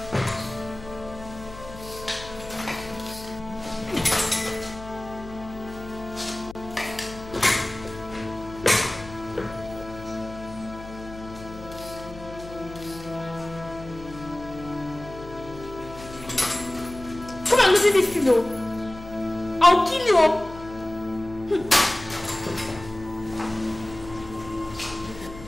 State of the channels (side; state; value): left; noise; hum, 15 dB below the sound